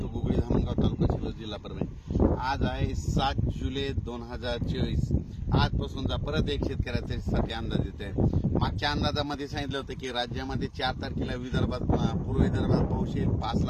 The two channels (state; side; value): identical; both; correlation 1.00